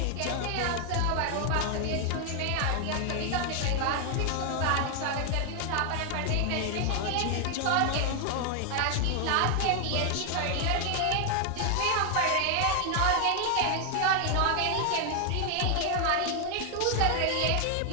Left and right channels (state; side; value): different; both; correlation 0.00